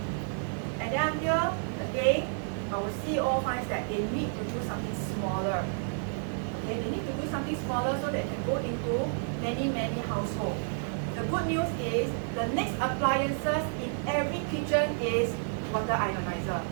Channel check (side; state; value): left; silent; 56 dB below the other